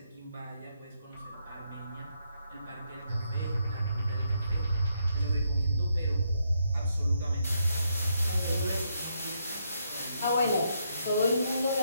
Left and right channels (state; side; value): inverted; both; correlation -0.77